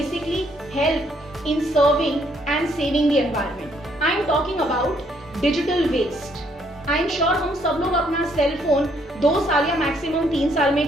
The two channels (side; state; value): both; normal; correlation 0.69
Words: help in serving and saving the environment. I am talking about digital waste. I am sure हम सब लोग अपना cell phone 2 साल या maximum 3 साल में